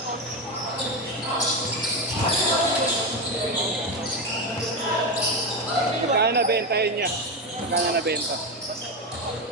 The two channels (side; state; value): both; normal; correlation 0.13